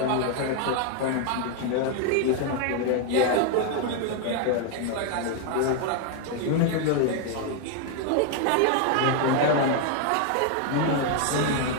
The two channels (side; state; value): both; different; correlation 0.01